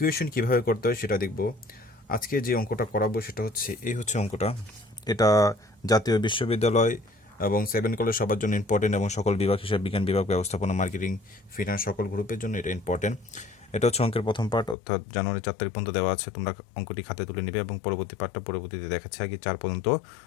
কিভাবে করতে হয় সেটা দেখব। আজকে যে অঙ্কটা করাবো সেটা হচ্ছে এই হচ্ছে অঙ্কটা। এটা জাতীয় বিশ্ববিদ্যালয় এবং 7 কলেজ সবার জন্য ইম্পর্টেন্ট এবং সকল বিভাগ, হিসাব বিজ্ঞান বিভাগ, ব্যবস্থাপনা, মার্কেটিং, ফিনান্স সকল গ্রুপের জন্য এটা ইম্পর্টেন্ট। এটা হচ্ছে অঙ্কের প্রথম পার্ট, অর্থাৎ জানুয়ারি 4 তারিখ পর্যন্ত দেওয়া আছে। তোমরা অঙ্কটি খাতে তুলে নেবে এবং পরবর্তী পার্টটা পরবর্তীতে দেখাচ্ছে, আগে 4 পর্যন্ত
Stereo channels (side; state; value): right; drops out; at 14.8 s